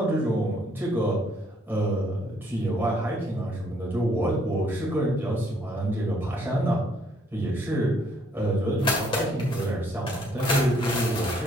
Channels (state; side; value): normal; both; correlation 0.66